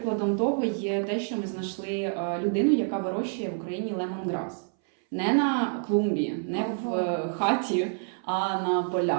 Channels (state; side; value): silent; left; 60 dB below the other